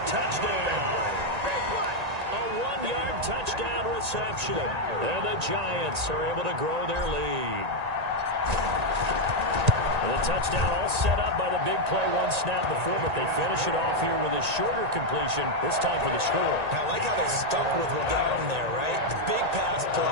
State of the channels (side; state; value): left; late; 1.9 ms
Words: touchdown. A 1-yard touchdown reception. And the Giants are able to grow their lead. And the touchdown all set up by the big play, 1 snap before, but they finish it off here with a shorter completion, this time for the score. I like how they stuck with what got them there, right? The big pass